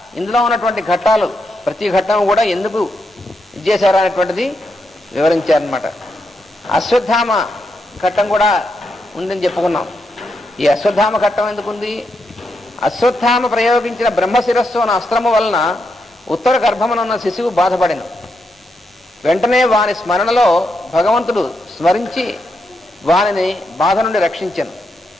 ఇందులో ఉన్నటువంటి ఘట్టాలు ప్రతి ఘట్టం కూడా ఎందుకు ఇచ్చేశారు అనేటువంటిది వివరించారనమాట. అశ్వత్థామ ఘట్టం కూడా ఉందని చెప్పుకున్నాం. ఈ అశ్వత్థామ ఘట్టం ఎందుకుంది, అశ్వత్థామ ప్రయోగించిన బ్రహ్మశిరస్సు అన్న అస్త్రము వలన ఉత్తర గర్భమునున్న శిశువు బాధపడిన వెంటనే వాని స్మరణలో భగవంతుడు స్మరించి వానిని బాధ నుండి రక్షించను.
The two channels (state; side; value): normal; both; correlation 0.82